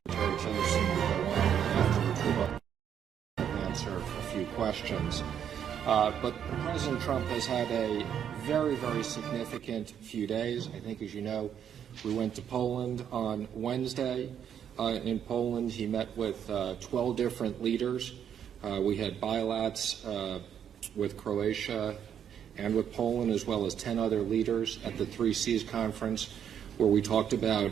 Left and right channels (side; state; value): left; quieter; 8.9 dB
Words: Tillerson will go on, afterwards we'll answer a few questions. But President Trump has had a very, very significant few days. I think, as you know, we went to Poland on Wednesday. In Poland, he met with 12 different leaders. We had bilats with Croatia and with Poland, as well as 10 other leaders at the 3Cs conference, where we talked about